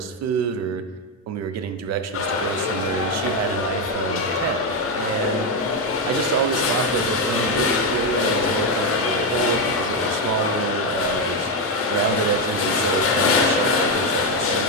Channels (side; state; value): both; normal; correlation 0.07